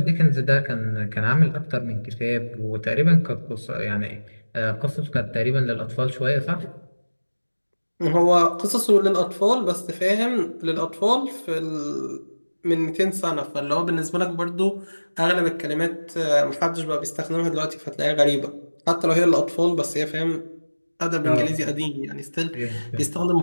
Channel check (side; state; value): both; inverted; correlation -1.00